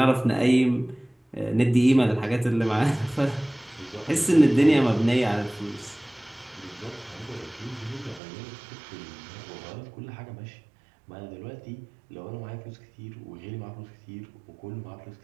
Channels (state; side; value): drops out; left; at 8.2 s